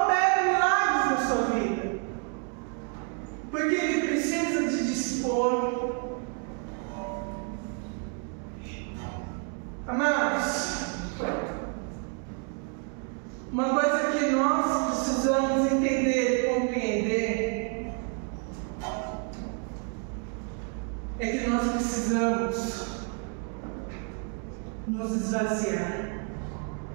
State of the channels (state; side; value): quieter; left; 39.6 dB